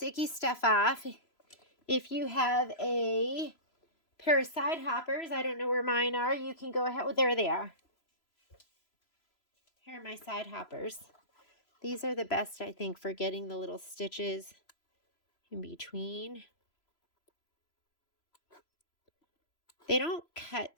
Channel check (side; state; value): right; late; 3.0 ms